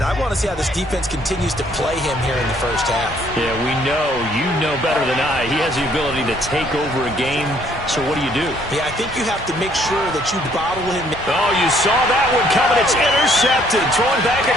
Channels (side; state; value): both; normal; correlation 0.64